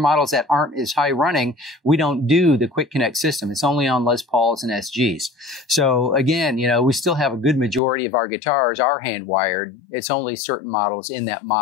that aren't as high running, we don't do the QuickConnect system. It's only on Les Pauls and SGs. So again, we still have a good majority of our guitars are hand wired. It's only certain models in that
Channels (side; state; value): right; drops out; at 7.8 s